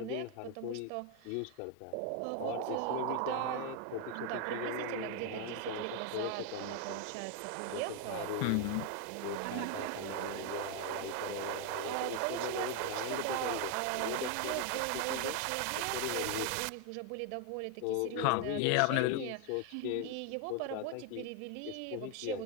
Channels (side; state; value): both; different; correlation 0.01